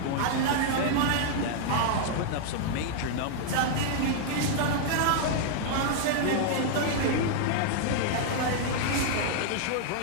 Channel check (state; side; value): different; both; correlation -0.01